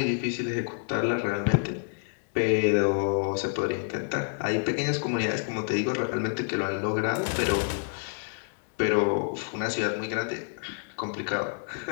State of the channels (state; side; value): silent; right; digital silence